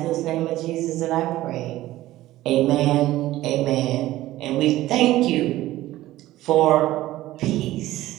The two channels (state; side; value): quieter; left; 15.7 dB